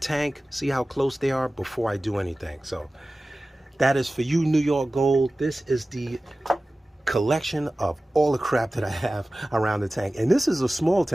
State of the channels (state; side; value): normal; both; correlation 0.97